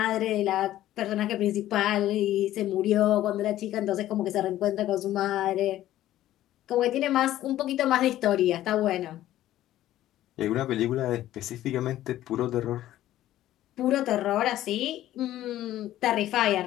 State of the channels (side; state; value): right; quieter; 13.7 dB